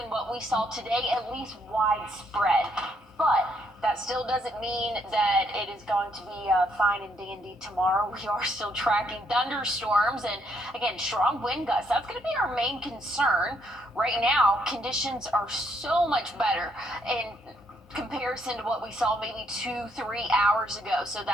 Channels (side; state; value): both; normal; correlation 0.72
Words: what we saw today, at least widespread. But that still doesn't mean that it is going to be fine and dandy tomorrow. We are still tracking thunderstorms and, again, strong wind gusts. That's going to be our main concern. Right now, conditions are so much better in comparison to what we saw maybe 2-3 hours ago. So